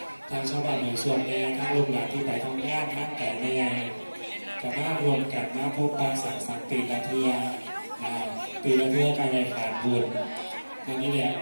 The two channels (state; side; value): inverted; both; correlation -1.00